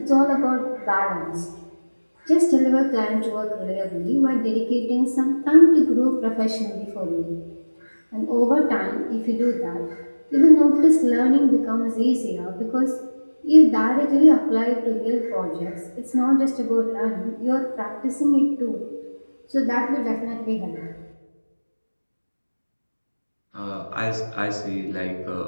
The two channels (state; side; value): inverted; both; correlation -1.00